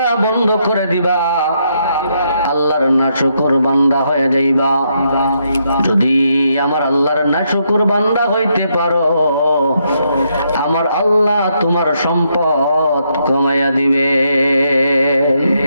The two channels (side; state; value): both; inverted; correlation -0.77